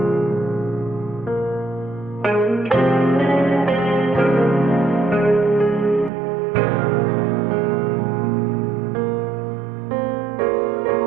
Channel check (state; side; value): drops out; left; at 6.1 s